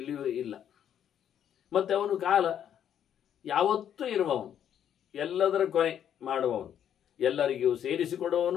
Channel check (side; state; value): right; quieter; 9.6 dB